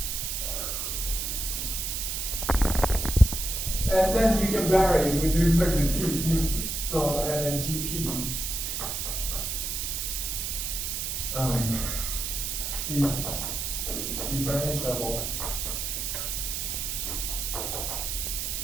And then you can vary with respect to P smoothly. So, and then GP is differentiable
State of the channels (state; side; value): noise; right; hiss, 2 dB below the sound